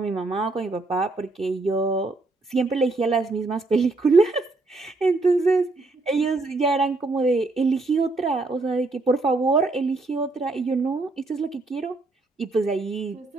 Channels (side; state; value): left; quieter; 3.2 dB